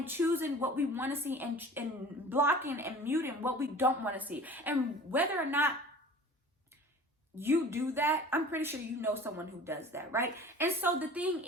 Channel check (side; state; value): both; normal; correlation 0.43